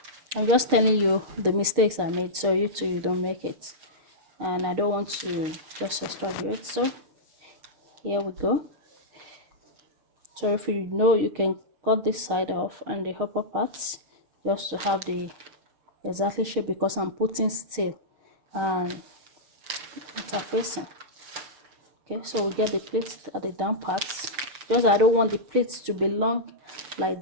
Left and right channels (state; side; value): late; left; 6.5 ms